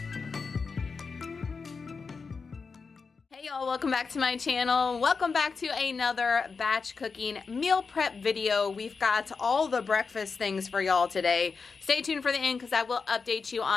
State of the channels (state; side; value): quieter; right; 4.9 dB